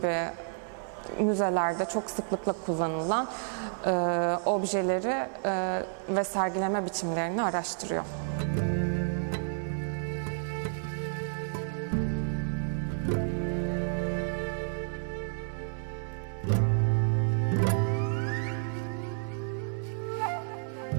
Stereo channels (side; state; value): left; silent; digital silence